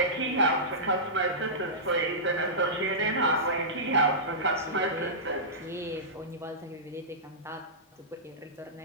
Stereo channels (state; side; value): normal; both; correlation -0.17